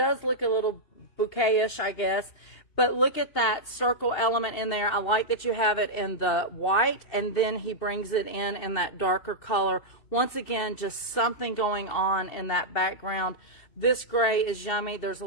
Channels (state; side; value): late; right; 2.7 ms